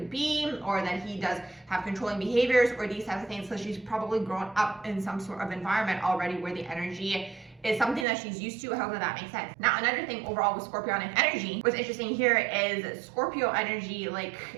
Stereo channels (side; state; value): left; drops out; at 8.1 s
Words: be, or that he does have controlling behaviors or these types of things. So she's probably grown up in some sort of environment already where the energy is something that she's used to. However, that makes sense. Now, another thing overall with Scorpionic energy, what's interesting here is Scorpio energy, like